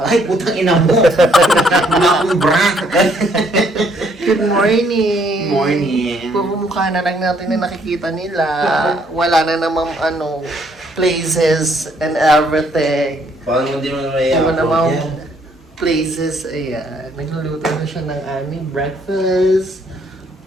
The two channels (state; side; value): normal; both; correlation 0.67